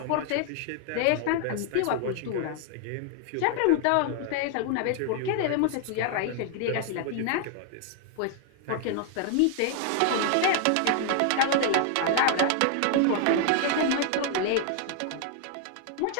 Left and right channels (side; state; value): both; different; correlation 0.00